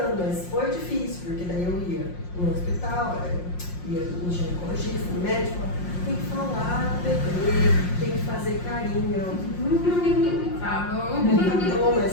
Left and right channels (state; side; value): late; right; 5.6 ms